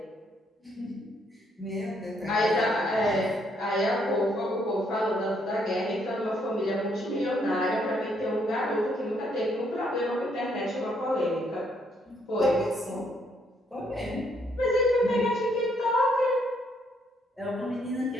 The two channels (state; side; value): normal; both; correlation 0.71